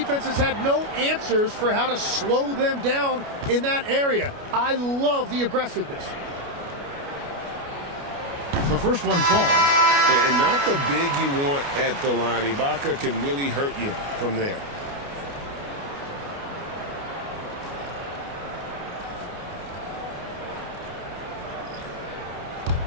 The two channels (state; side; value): late; left; 29 ms